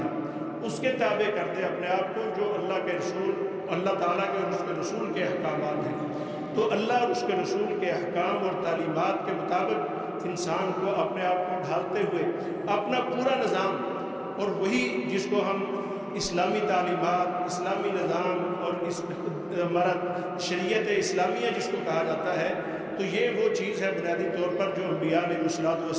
اس کے تابع کر دے اپنے آپ کو جو اللہ کے رسول، اللہ تعالیٰ کے اور اس کے رسول کے احکامات ہیں۔ تو اللہ اور اس کے رسول کے احکام اور تعلیمات کے مطابق انسان کو اپنے آپ کو ڈھالتے ہوئے اپنا پورا نظام، اور وہی جس کو ہم اسلامی تعلیمات، اسلامی نظام اور ہمارا شریعت اسلامیہ جس کو کہا جاتا ہے، تو یہ وہ چیز ہے بنیادی طور پر جو انبیاء علیہ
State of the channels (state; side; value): identical; both; correlation 1.00